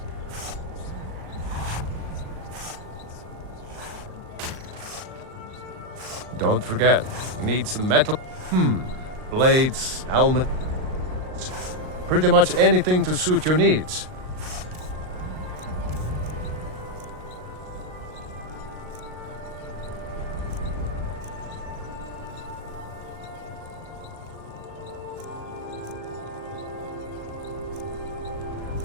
Don't forget, you need some metal. Blades, helmet. Pretty much anything to suit your needs.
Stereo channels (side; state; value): left; late; 38 ms